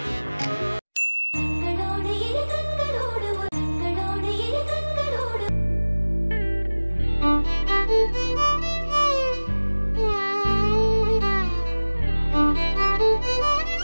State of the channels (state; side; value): inverted; both; correlation -1.00